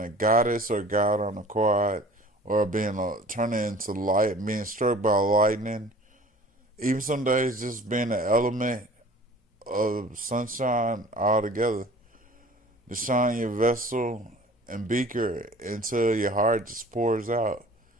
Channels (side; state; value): both; normal; correlation 0.46